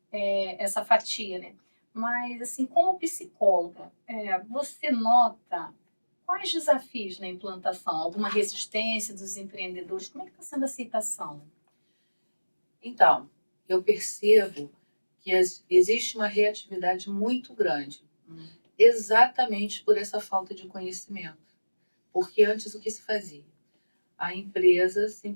essa fatia, né? Mas, assim, como psicóloga, você nota quais desafios na implantação? Alguma resistência dos empreendedores? Como é que está sendo a aceitação? Então, eu percebo que existe uma reatividade muito grande, exatamente por essa falta de conhecimento. Porque antes o que se fazia? A empresa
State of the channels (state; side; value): inverted; both; correlation -1.00